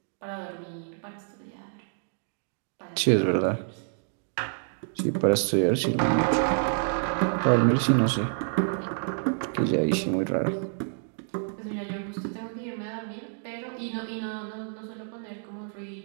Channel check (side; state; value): left; silent; 59 dB below the other